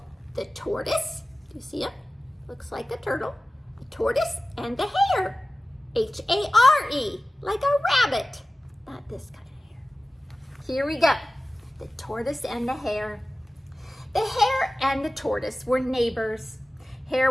The Tortoise. Do you see him? Looks like a turtle. The Tortoise and the Hare. H-A-R-E, like a rabbit. Not this kind of hare. Here we go. The Tortoise and the Hare. The Hare and the Tortoise were neighbors. Hare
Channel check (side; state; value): both; normal; correlation 0.96